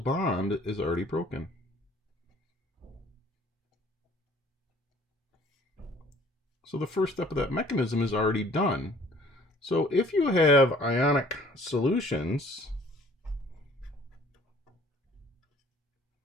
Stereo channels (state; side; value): normal; both; correlation 0.55